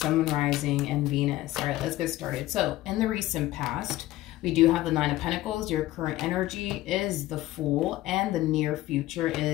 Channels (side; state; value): right; quieter; 16.3 dB